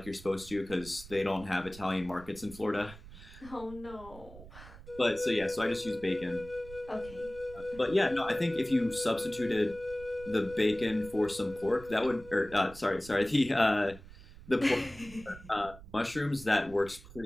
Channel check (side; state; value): right; noise; rumble, 18 dB below the sound